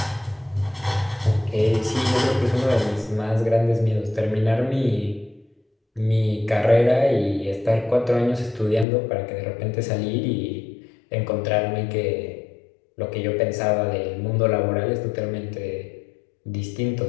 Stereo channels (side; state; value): right; drops out; at 8.8 s